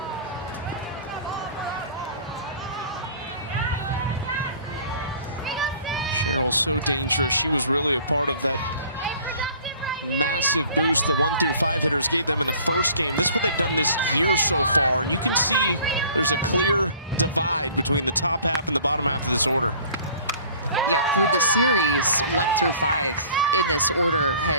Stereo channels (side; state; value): both; inverted; correlation -0.50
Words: Sherrill so dangerous. She was really a part of that massive boost the 1 through 5 hitters gave them in the first game. This is what they've done this year so far, and you can see there's a clear divide between the top half and the bottom half of this order. Yeah, for the series, 1 through 5 in this order